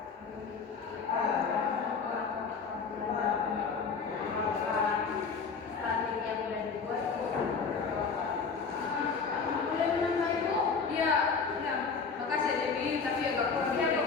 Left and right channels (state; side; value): quieter; right; 5.3 dB